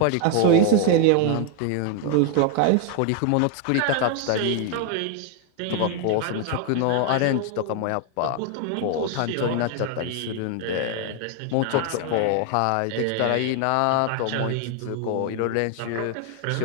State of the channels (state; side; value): different; both; correlation 0.00